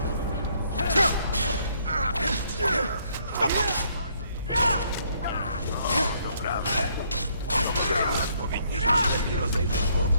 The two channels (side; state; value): both; inverted; correlation -0.68